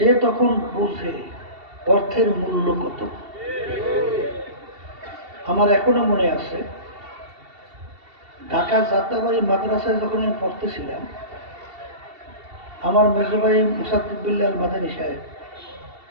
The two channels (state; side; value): late; left; 2.7 ms